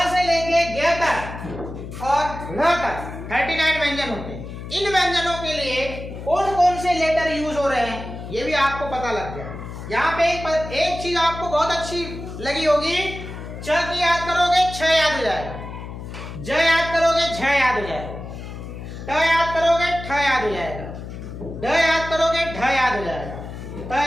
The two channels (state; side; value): noise; left; hum, 10 dB below the sound